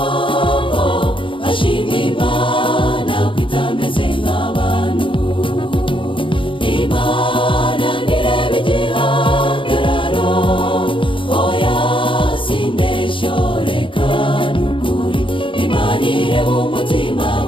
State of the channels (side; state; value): right; late; 0.25 ms